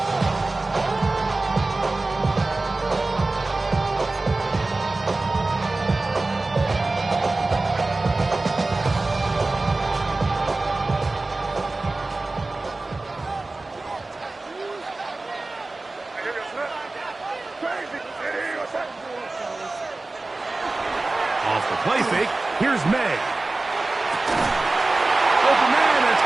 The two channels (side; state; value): left; quieter; 3.2 dB